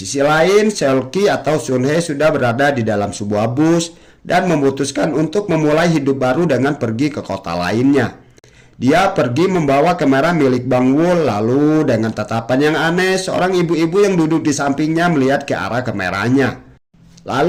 lain, Seolki atau Sun Hye sudah berada di dalam sebuah bus dan memutuskan untuk memulai hidup baru dengan pergi ke kota lainnya. Dia pergi membawa kamera milik Bang Wul, lalu dengan tatapan yang aneh, seorang ibu-ibu yang duduk di sampingnya melihat ke arah kameranya.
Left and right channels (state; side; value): identical; both; correlation 1.00